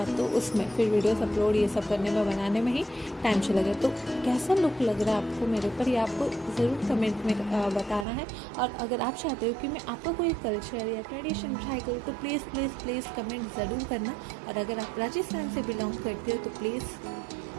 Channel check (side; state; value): left; drops out; at 8.1 s